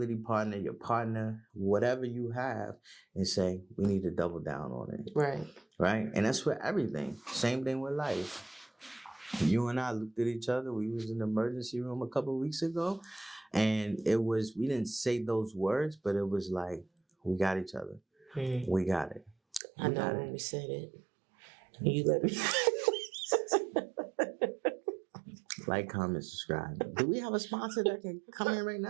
partner, your partner, whatever you have, and say, we need to double down on it. Right. Right? And that's for everything. Same thing with life. You and I looked at each other. We was in the emergency room a couple of weeks ago. And we didn't say those words, but it was like, we got each other. We got it. I know when we said it. You let me. Like, comment, subscribe. Do we have a sponsor that can come in right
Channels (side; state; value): left; drops out; at 19.6 s